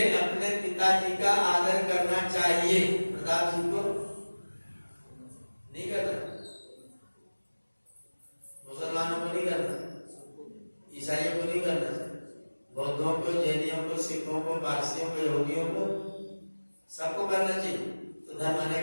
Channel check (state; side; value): inverted; both; correlation -1.00